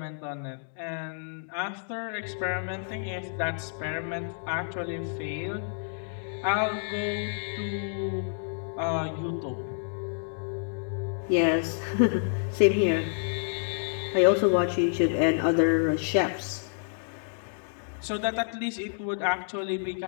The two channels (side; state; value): right; silent; digital silence